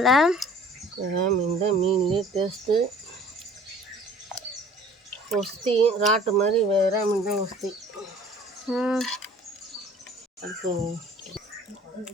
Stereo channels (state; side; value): normal; both; correlation 0.50